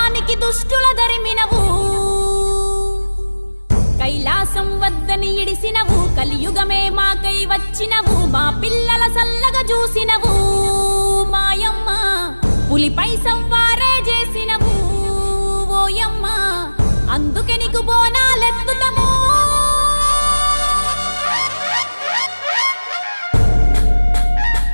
దుష్టుల ధరిమినవు. కైలాసం వద్దని ఇడిసినవు, కలియుగమే మాకై వచ్చినవు, మా పిల్లల సల్లగా చూసినవు మాయమ్మ, పులిపై సంవారే చేసినవు ఓయమ్మ, అందుకే నీకు బోనాలెత్తుతము.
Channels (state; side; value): inverted; both; correlation -1.00